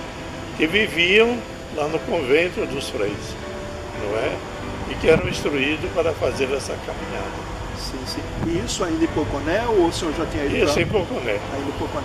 que viviam lá no convento dos freis, não é? E que eram instruídos para fazer essa caminhada. Sim, sim. E isso ainda em Poconé ou o senhor já tinha ido? Isso em Poconé. Ainda em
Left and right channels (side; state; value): both; identical; correlation 1.00